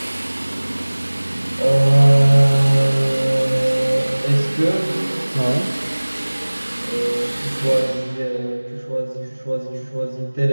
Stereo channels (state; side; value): inverted; both; correlation -1.00